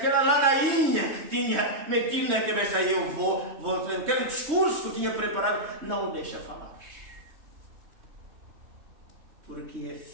ladainha que tinha metido na cabeça, aí eu vou, aquele discurso que eu tinha preparado, não o deixa falar. Porque é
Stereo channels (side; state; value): left; late; 3.2 ms